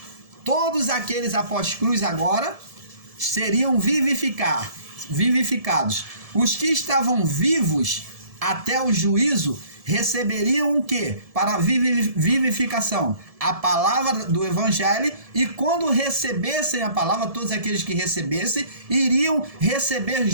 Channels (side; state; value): left; late; 1.7 ms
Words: Todos aqueles após cruz agora seriam vivificados. Os que estavam vivos até o juízo receberiam o quê? Para a vivificação? A palavra do evangelho, e quando recebessem a palavra, todos aqueles que recebessem, iriam receber